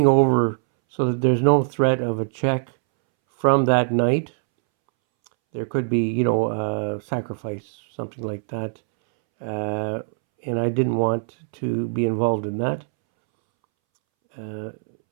over so that there's no threat of a check from that knight. There could be, sacrifice, something like that. And I didn't want to be involved in that.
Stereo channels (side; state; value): left; silent; 64 dB below the other